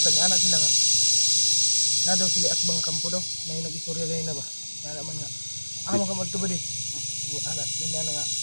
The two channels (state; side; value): inverted; both; correlation -1.00